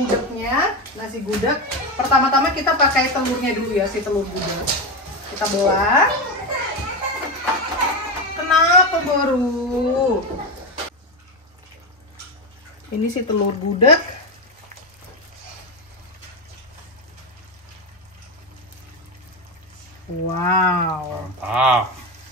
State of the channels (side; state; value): both; normal; correlation 0.14